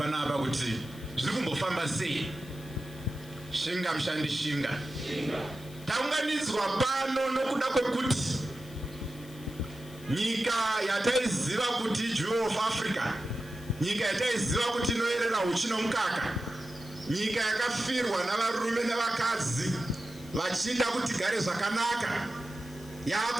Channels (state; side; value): noise; left; hiss, 21 dB below the sound